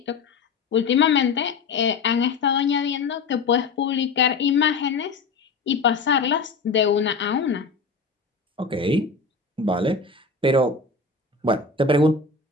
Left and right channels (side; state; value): right; quieter; 4.5 dB